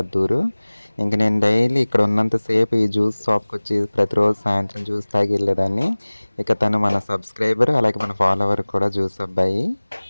ఊరు. ఇంక నేను డైలీ ఇక్కడ ఉన్నంతసేపు ఈ జ్యూస్ షాప్కి వచ్చి ప్రతిరోజు సాయంత్రం జ్యూస్ తాగి వెళ్ళేదాన్ని. ఇక తను మన సబ్స్క్రైబర్, అలాగే మన ఫాలోవర్ కూడా జ్యూస్ అబ్బాయి.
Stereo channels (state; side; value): inverted; both; correlation -1.00